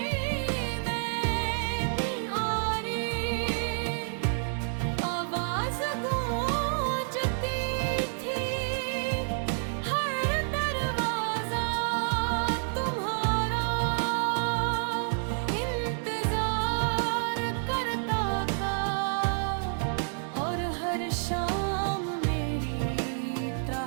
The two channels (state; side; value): silent; left; digital silence